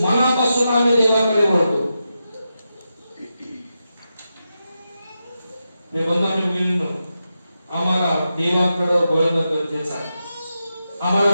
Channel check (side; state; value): both; inverted; correlation -0.88